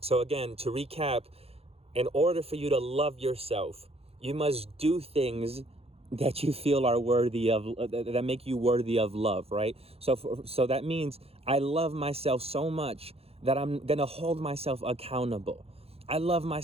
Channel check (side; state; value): left; late; 0.29 ms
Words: So again, to recap, in order for you to love yourself, you must do things that you feel are worthy of, that make you worthy of love, right? So that means I love myself so much that I'm gonna hold myself accountable. I love